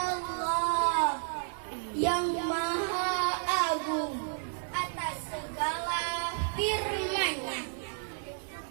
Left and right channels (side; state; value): left; silent; 57 dB below the other